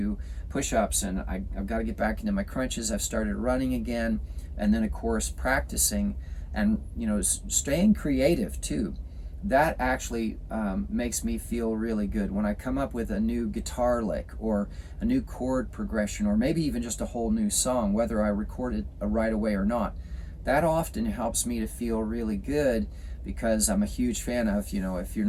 push-ups, and I've got to get back into my crunches. I've started running again, and then of course practicing, and staying creative too. That actually makes me feel really good when I come up with a new guitar lick or a new chord progression, or maybe even just a whole new song, whether I record it right away or not. That often helps me to feel really good, because I'm a huge fan of, if you're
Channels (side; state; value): both; identical; correlation 1.00